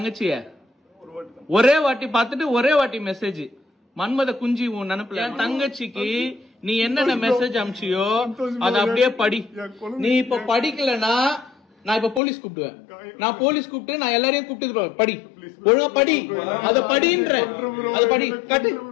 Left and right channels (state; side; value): drops out; right; at 12.2 s